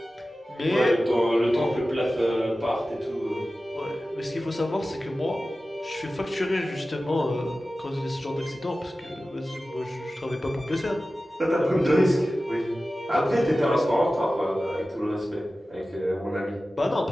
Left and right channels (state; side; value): normal; both; correlation 0.95